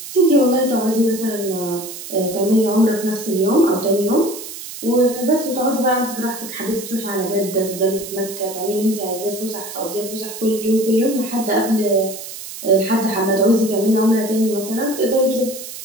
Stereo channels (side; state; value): right; noise; hiss, 11 dB below the sound